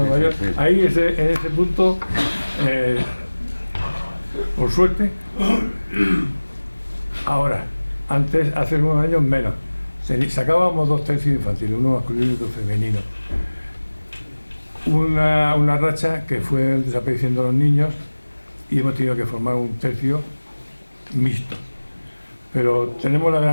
mayor, ahí en ese punto, por suerte, ahora, antes, hace unos años menos, sacábamos 2 tercios infantiles, uno masculino y otro femenino. Una racha que fue desapareciendo los niños y hemos tenido que formar un tercio mixto. Pero tenemos la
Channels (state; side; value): inverted; both; correlation -1.00